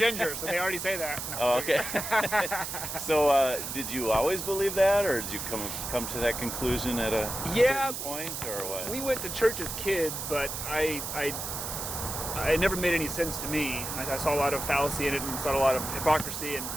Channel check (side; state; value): right; noise; hiss, 5 dB below the sound